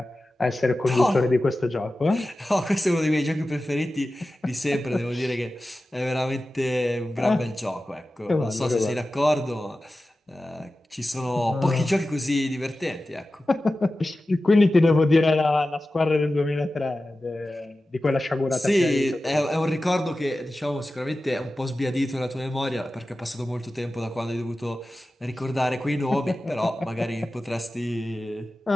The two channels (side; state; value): both; normal; correlation 0.94